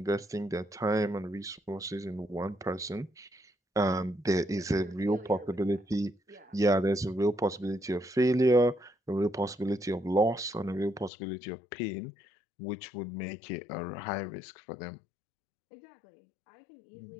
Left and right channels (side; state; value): right; drops out; at 11.1 s